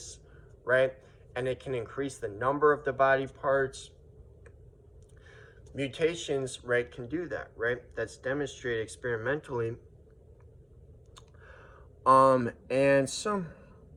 right? And it can increase the number of the body parts. Mutations, right, can do that, right? That's demonstrated experimentally. And so,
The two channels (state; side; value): identical; both; correlation 1.00